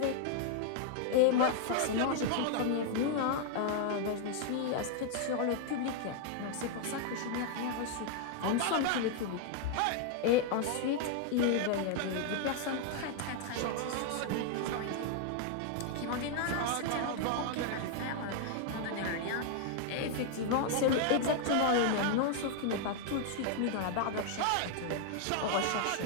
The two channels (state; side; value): different; both; correlation 0.00